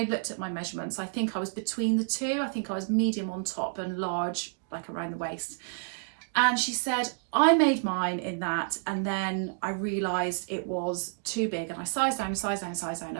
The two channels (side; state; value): left; silent; digital silence